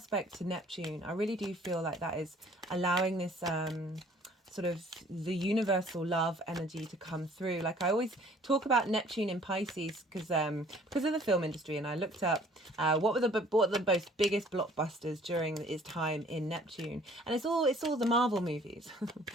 to Neptune, I really do feel like that is allowing this sort of the universal love energy to come through. Like I always talk about Neptune in Pisces because of the film industry, and I looked up what were the most biggest blockbusters during its time in Neptune, and it's all the Marvel movies.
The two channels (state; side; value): normal; both; correlation 0.55